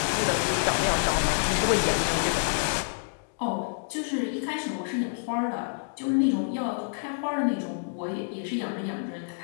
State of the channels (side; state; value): right; silent; digital silence